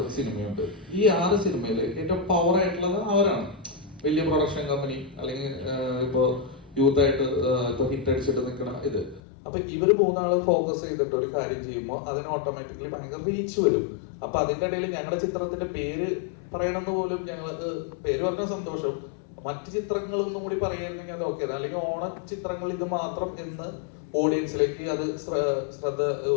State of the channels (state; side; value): drops out; right; at 9.2 s